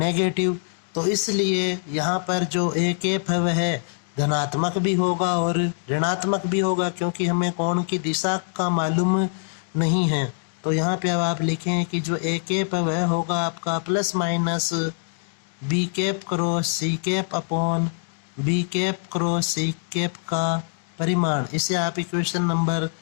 तो इसलिए यहाँ पर जो a कैप है वह धनात्मक भी होगा और ऋणात्मक भी होगा, क्योंकि हमें कोण की दिशा का मालूम नहीं है। तो यहाँ पे अब आप लिखें कि जो ए कैप है वह होगा आपका plus minus B cap cross C cap upon B cap cross C cap का परिमाण। इसे आप इक्वेशन नंबर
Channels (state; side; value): silent; right; digital silence